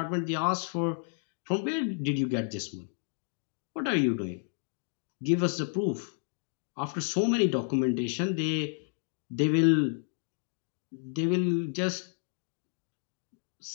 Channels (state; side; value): silent; right; 57 dB below the other